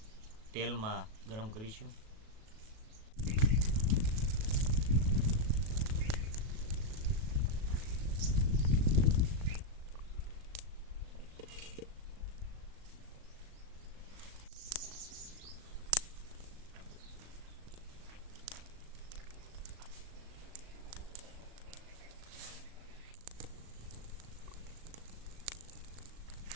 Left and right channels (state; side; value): late; left; 37 ms